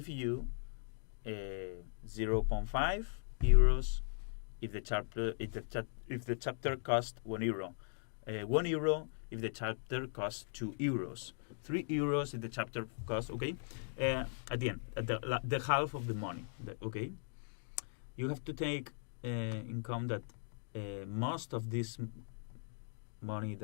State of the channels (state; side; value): silent; right; digital silence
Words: you 0.5 euros if the chapter costs €1. €1 if the chapter costs €2. €3 if the chapter costs. Okay, at the end, at the half of the money. Okay, you have to take in account that most of this money